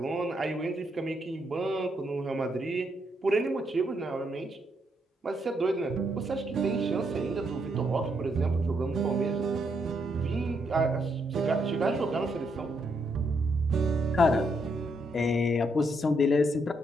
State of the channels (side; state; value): both; normal; correlation 0.76